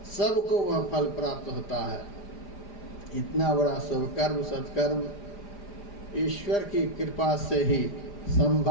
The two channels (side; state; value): right; late; 4.9 ms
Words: सबको वह फल प्राप्त होता है। इतना बड़ा शुभ कर्म सत्कर्म ईश्वर की कृपा से ही